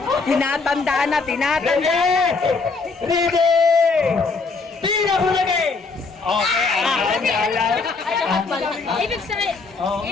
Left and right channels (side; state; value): right; quieter; 4.2 dB